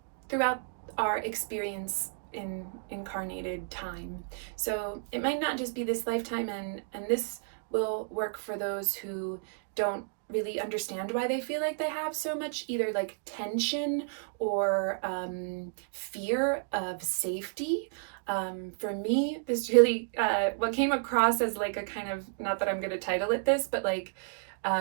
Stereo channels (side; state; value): left; silent; digital silence